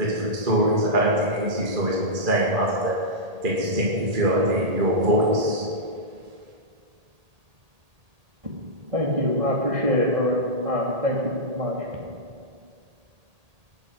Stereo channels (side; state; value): left; late; 1.8 ms